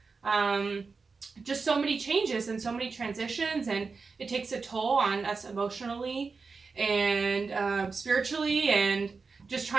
Just so many changes and so many transitions, and it takes a toll on us emotionally and spiritually, and just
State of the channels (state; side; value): quieter; left; 4.6 dB